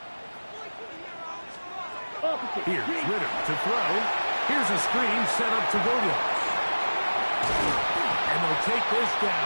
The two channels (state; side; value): inverted; both; correlation -1.00